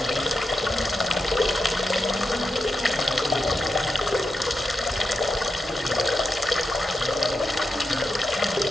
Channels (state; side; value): normal; both; correlation 0.88